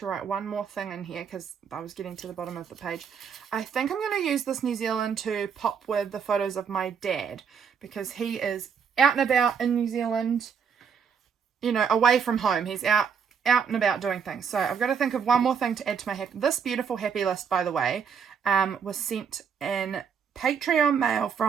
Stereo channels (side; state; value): left; quieter; 6.7 dB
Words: write one more thing in here because I was getting to the bottom of the page. I think I'm going to use this New Zealand to pop with the photos of my dad because he is out and about in New Zealand, you know, away from home. He's out and about doing things. So I've got to think of one more thing to add to my this beautiful happy list, by the way, was sent in Patreon mail